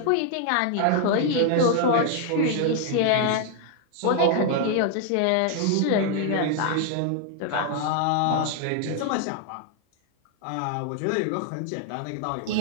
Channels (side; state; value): both; different; correlation 0.00